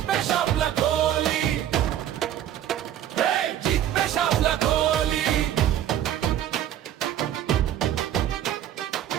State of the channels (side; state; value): left; quieter; 11.3 dB